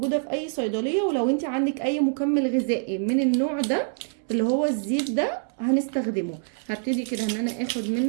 في اي صيدليه، ولو انت عندك اي مكمل غذائي من النوع ده اللي هو الزيت ده هنستخدمه. هبتدي كده ان انا اخد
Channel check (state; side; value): silent; left; 61 dB below the other